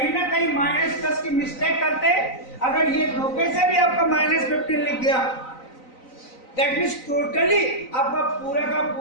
ना कहीं -+ की मिस्टेक करते। अगर ये धोखे से भी आपका -15 लिख गया दैट मींस टोटली आपका पूरा का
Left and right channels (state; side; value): late; right; 3.9 ms